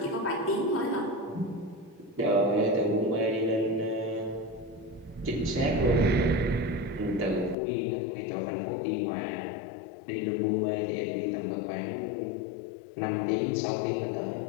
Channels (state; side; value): drops out; right; at 7.6 s